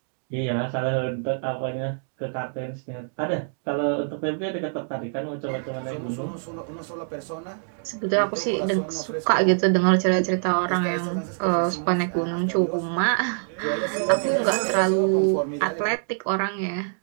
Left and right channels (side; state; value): left; silent; digital silence